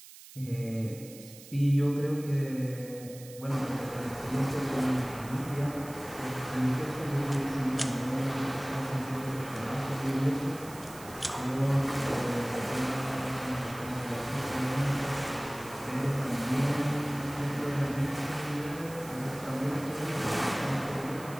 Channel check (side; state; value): right; noise; hiss, 17 dB below the sound